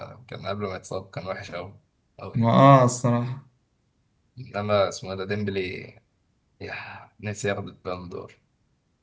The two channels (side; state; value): both; identical; correlation 1.00